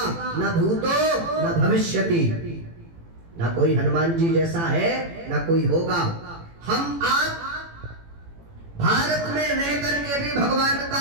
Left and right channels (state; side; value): late; left; 18 ms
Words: ना भूतो ना भविष्यति। ना कोई हनुमान जी जैसा है, ना कोई होगा। हम आप भारत में रह करके भी भगवान